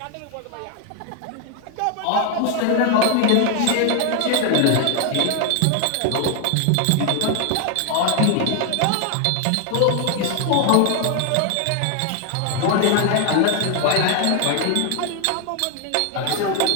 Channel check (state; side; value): different; both; correlation 0.00